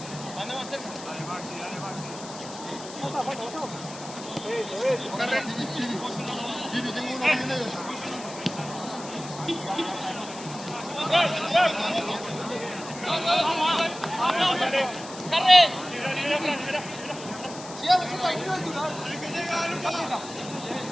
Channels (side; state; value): left; noise; hiss, 14 dB below the sound